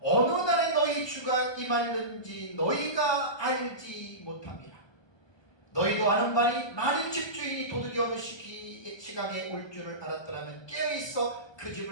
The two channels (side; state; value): right; late; 1.2 ms